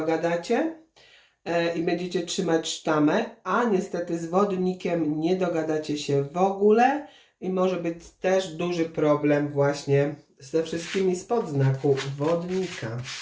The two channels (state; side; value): identical; both; correlation 1.00